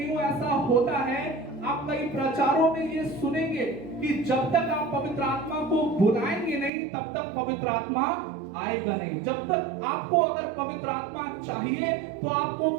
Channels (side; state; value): left; drops out; at 6.7 s